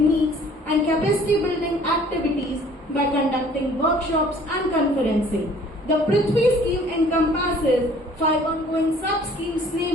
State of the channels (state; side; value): normal; both; correlation 0.54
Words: and capacity building activities by conducting workshops and conferencing. The Prithvi scheme encompasses 5 ongoing sub-schemes,